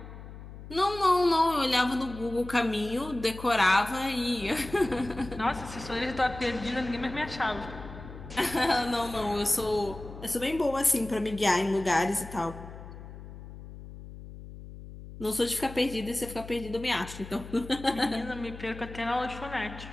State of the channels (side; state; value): left; noise; hum, 14 dB below the sound